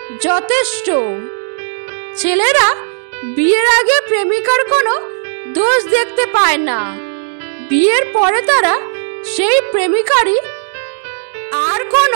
যথেষ্ট। ছেলেরা বিয়ের আগে প্রেমিকার কোনো দোষ দেখতে পায় না, বিয়ের পরে তারা সেই প্রেমিকারই আর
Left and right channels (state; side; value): silent; left; digital silence